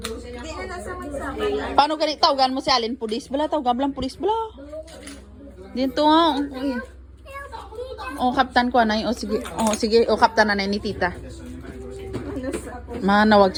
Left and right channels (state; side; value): identical; both; correlation 1.00